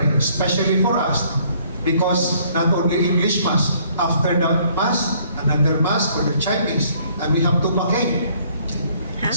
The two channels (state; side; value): inverted; both; correlation -0.62